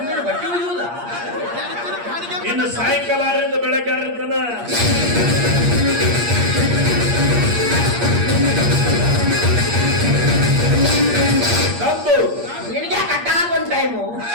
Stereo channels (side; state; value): left; late; 8.5 ms